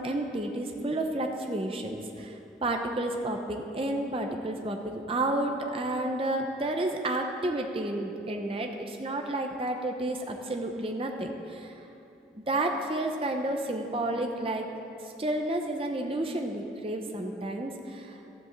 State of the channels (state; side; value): normal; both; correlation 0.47